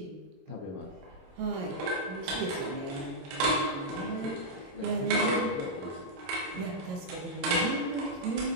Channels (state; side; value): late; left; 22 ms